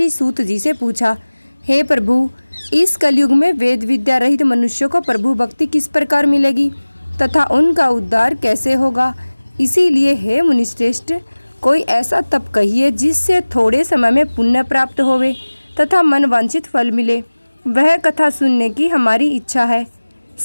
सूत जी से पूछा, हे प्रभु, इस कलयुग में वेद विद्या रहित मनुष्यों को प्रभु भक्ति किस प्रकार मिलेगी तथा उनका उद्धार कैसे होगा। इसीलिए हे मुनिश्रेष्ठ, कोई ऐसा तप कहिए जिससे थोड़े समय में पुण्य प्राप्त होवे तथा मनवांछित फल मिले। वह कथा सुनने की हमारी इच्छा है।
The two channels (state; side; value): inverted; both; correlation -1.00